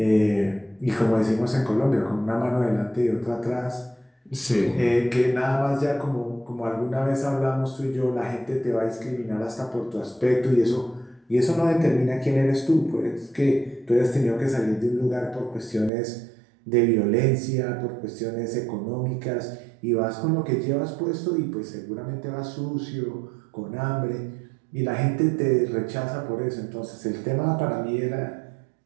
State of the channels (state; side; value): drops out; left; at 15.9 s